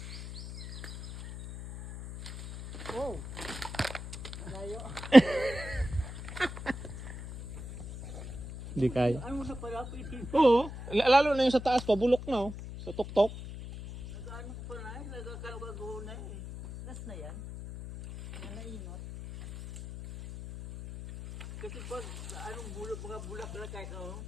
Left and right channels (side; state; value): left; noise; hum, 10 dB below the sound